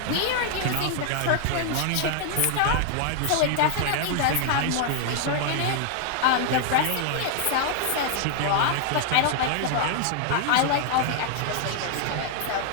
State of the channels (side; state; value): both; different; correlation 0.00